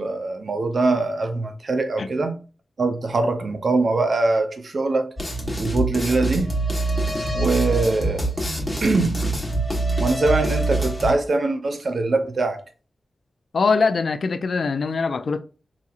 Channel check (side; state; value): both; normal; correlation 0.86